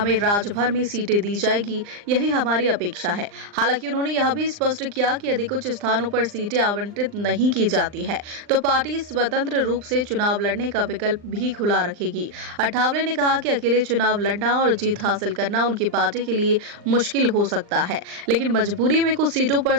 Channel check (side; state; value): left; late; 39 ms